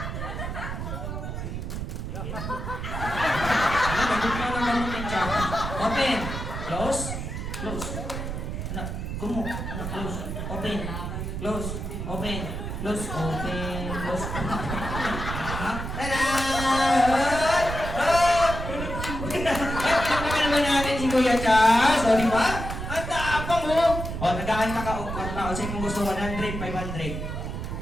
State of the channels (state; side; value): noise; right; rumble, 5 dB below the sound